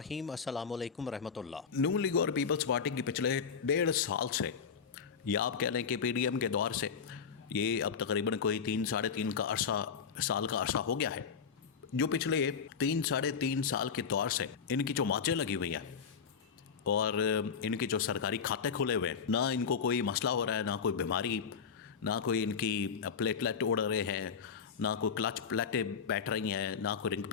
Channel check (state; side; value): quieter; right; 6.4 dB